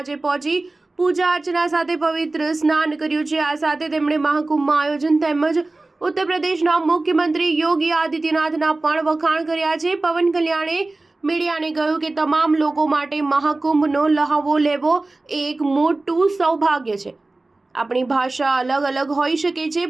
પહોંચી પૂજા અર્ચના સાથે પવિત્ર સ્નાન કર્યું છે. આ સાથે તેમણે મહાકુંભમાં આયોજન તેમજ ઉત્તર પ્રદેશના મુખ્યમંત્રી યોગી આદિત્યનાથના પણ વખાણ કર્યા છે. પવન કલ્યાણે મીડિયાને કહ્યું કે તમામ લોકો માટે મહાકુંભનો લહાવો લેવો એ એક મોટું સૌભાગ્ય છે. આપણી ભાષા અલગ હોઈ શકે છે,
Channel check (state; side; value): quieter; left; 3.1 dB